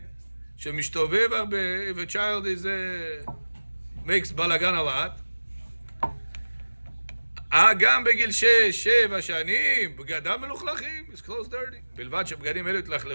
שמשתובב הרבה, if a child is makes balagan a lot, גם בגיל 6-7 שנים, בגדם מלוכלכים, his clothes dirty. בלבד שבגדים אלו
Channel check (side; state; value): both; inverted; correlation -1.00